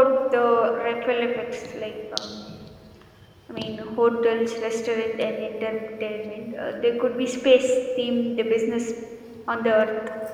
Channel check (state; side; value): identical; both; correlation 1.00